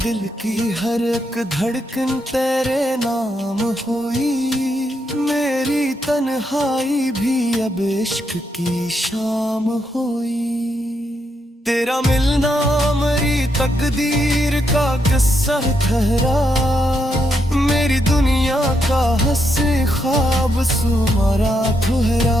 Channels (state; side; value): normal; both; correlation 0.80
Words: की हर एक धड़कन तेरे नाम हुई, मेरी तन्हाई भी अब इश्क की शाम हुई। तेरा मिलना मेरी तकदीर का किस्सा ठहरा, मेरी दुनिया का हंसी ख्वाब सुमारा